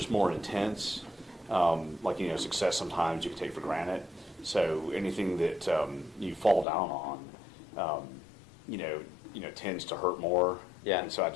more intense. Like, success sometimes you can take for granted. So anything that you fall down on, tends to hurt more. Yeah. And so I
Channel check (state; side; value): drops out; right; at 6.7 s